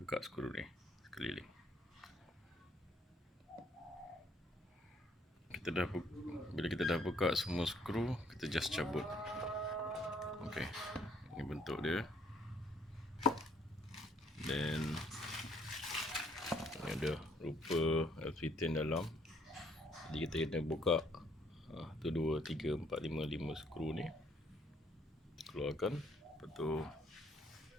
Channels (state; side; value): normal; both; correlation 0.66